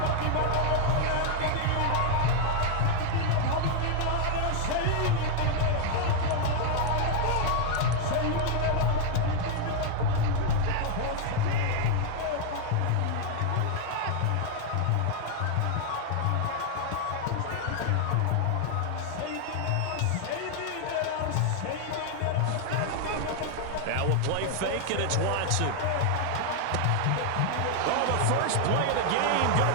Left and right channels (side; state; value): both; different; correlation 0.00